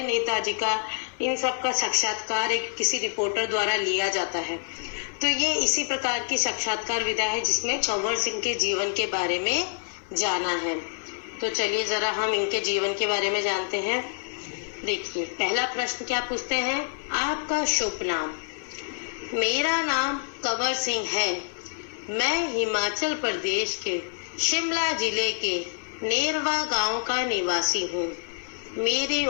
नेताजी का, इन सब का साक्षात्कार एक किसी रिपोर्टर द्वारा लिया जाता है। तो ये इसी प्रकार की साक्षात्कार विधा है जिसमें कंवर सिंह के जीवन के बारे में जाना है। तो चलिए जरा हम इनके जीवन के बारे में जानते हैं। देखिए, पहला प्रश्न क्या पूछते हैं? आपका शुभ नाम? मेरा नाम कंवर सिंह है। मैं हिमाचल प्रदेश के शिमला जिले के नेरवा गांव का निवासी हूँ। मेरी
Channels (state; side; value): silent; right; 60 dB below the other